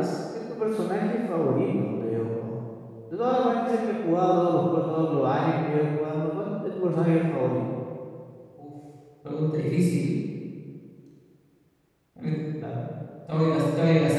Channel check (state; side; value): identical; both; correlation 1.00